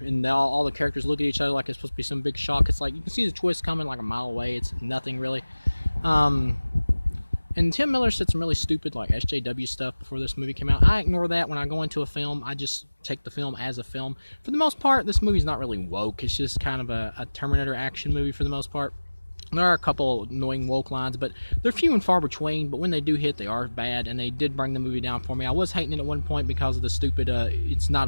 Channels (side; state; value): both; inverted; correlation -1.00